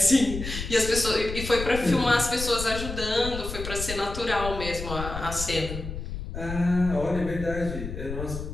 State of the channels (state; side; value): noise; left; rumble, 7 dB below the sound